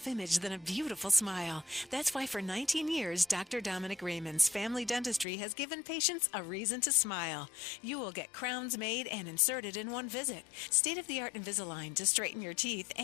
than a beautiful smile. That's why for 19 years, Dr. Dominic Raymond's Family Dentistry has given patients a reason to smile. You will get crowns made and inserted in one visit. State-of-the-art Invisalign to straighten your teeth,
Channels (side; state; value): right; drops out; at 5.2 s